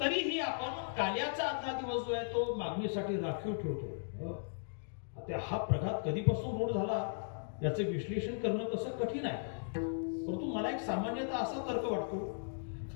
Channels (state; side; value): silent; right; digital silence